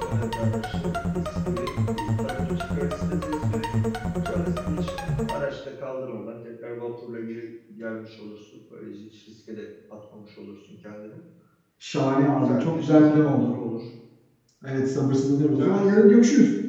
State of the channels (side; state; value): both; identical; correlation 1.00